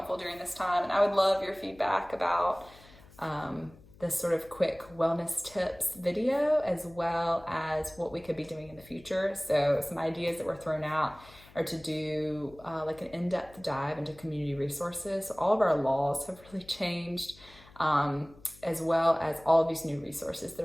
during this time. And I would love your feedback about this sort of quick wellness tips video, as well as what we could be doing in the future. So some ideas that were thrown out are to do like an in-depth dive into community resources. So all of our laws have really changed, as well as all of these new resources that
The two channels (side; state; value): left; noise; hum, 23 dB below the sound